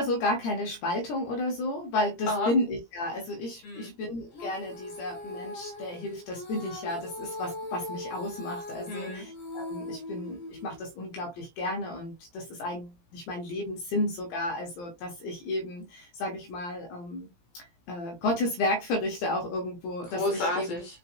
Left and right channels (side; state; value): right; late; 17 ms